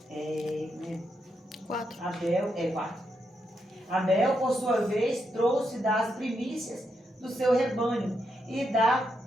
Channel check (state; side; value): normal; both; correlation 0.82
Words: 4. Abel, por sua vez, trouxe das primícias do seu rebanho e